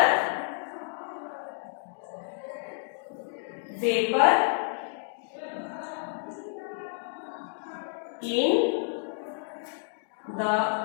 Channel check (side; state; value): right; silent; 58 dB below the other